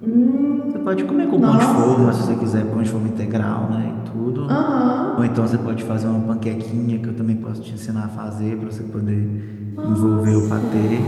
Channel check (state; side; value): identical; both; correlation 1.00